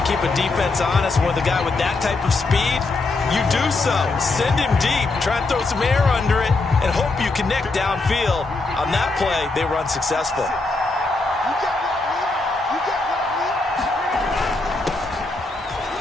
to keep a defense honest. With a guy with that type of speed, you do so. Send him deep. Try and throw some air under it and hope you connect downfield. On that play, they run successful.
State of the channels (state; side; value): quieter; right; 3.4 dB